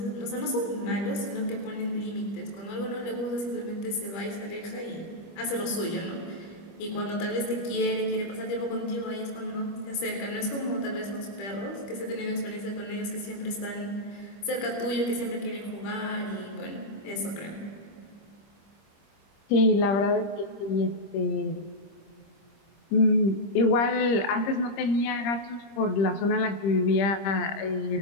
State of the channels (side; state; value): right; late; 25 ms